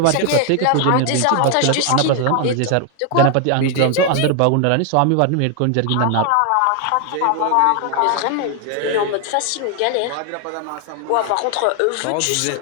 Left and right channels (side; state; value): both; different; correlation 0.00